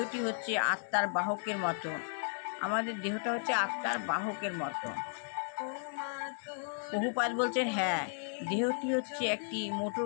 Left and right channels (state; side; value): silent; right; digital silence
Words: হচ্ছে আত্মার বাহকের মতো। আমাদের দেহটা হচ্ছে আত্মার বাহকের মতো। প্রভুপাদ বলছেন, হ্যাঁ, দেহটি হচ্ছে একটি মোটর